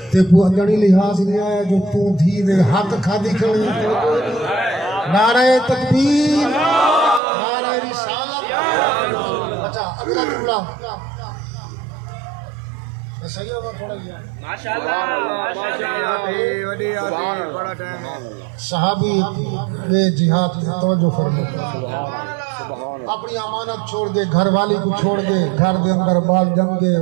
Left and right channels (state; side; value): drops out; left; at 7.2 s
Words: تے کو اجڑی لحاظ نہیں آیا جو تو دھی دے حق کھا دی کھڑی نعرہ تکبیر نعرہ رسالت اچھا اگلا جملہ صحیح ہوا تھوڑا گیا ماشاءاللہ وڈی آتی بڑا ٹائم ہے صحابی یہ جہاد کی توجہ فرمائے اپنی امانت چھوڑ دے گھر والی کو چھوڑ دے گھر دے اندر بال جم گے